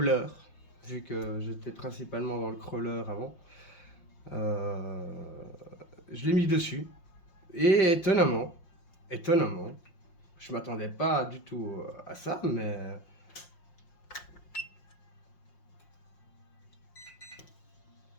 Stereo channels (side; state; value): right; late; 5.6 ms